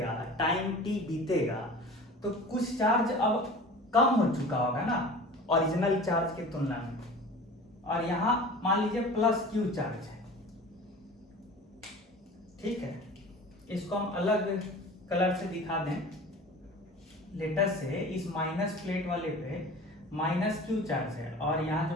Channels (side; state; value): both; normal; correlation 0.39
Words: टाइम t बीतेगा, तो कुछ चार्ज अब कम हो चुका होगा ना ओरिजिनल चार्ज की तुलना में, और यहां मान लीजिए प्लस क्यू चार्ज है, ठीक है। इसको हम अलग कलर से दिखा दें, लेटर से इस माइनस प्लेट वाले पे माइनस क्यू चार्ज है, और